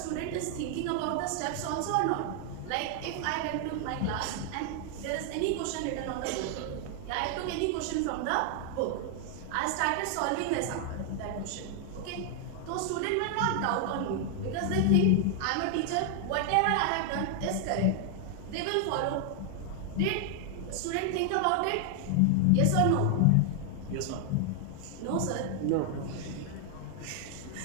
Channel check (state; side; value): different; both; correlation 0.00